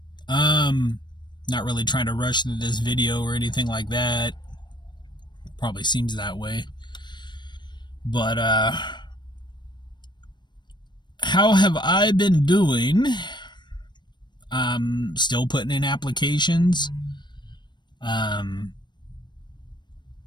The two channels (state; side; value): late; right; 0.22 ms